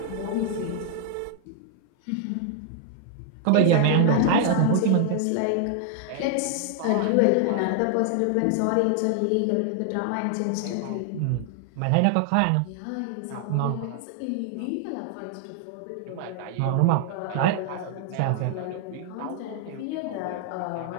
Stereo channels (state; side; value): different; both; correlation 0.00